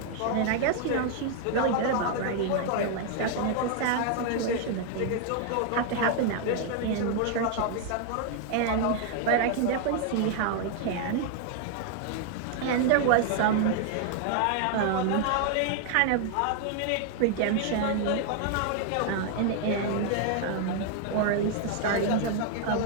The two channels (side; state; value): both; different; correlation 0.00